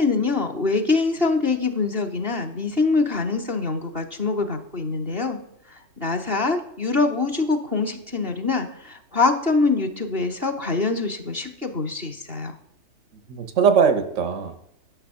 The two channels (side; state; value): left; late; 2.8 ms